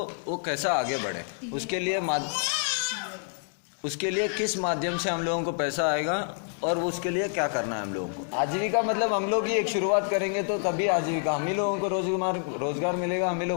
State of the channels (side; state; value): right; silent; 60 dB below the other